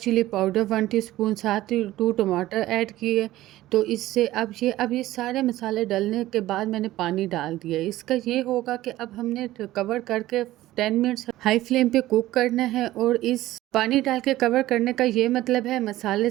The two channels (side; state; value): left; quieter; 15.7 dB